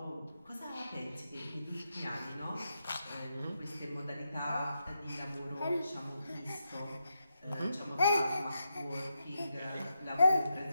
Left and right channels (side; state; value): both; inverted; correlation -0.85